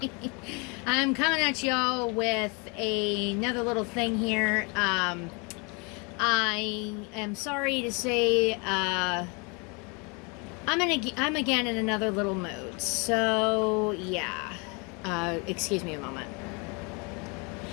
I'm coming at y'all with another little thing here. I am sorry to say, I'm again in another little mood. So yeah, excuse me a moment.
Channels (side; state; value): right; quieter; 31.2 dB